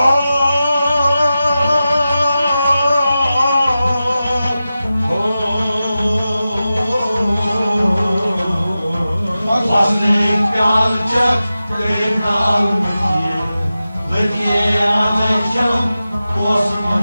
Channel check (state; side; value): inverted; both; correlation -0.93